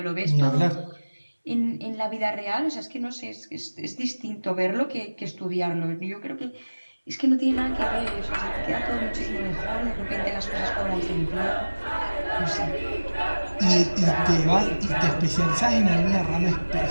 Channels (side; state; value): both; inverted; correlation -1.00